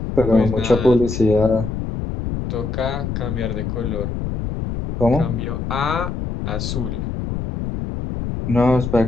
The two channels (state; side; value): noise; left; rumble, 4 dB below the sound